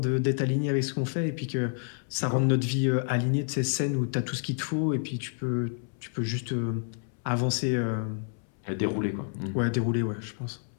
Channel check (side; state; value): right; silent; 59 dB below the other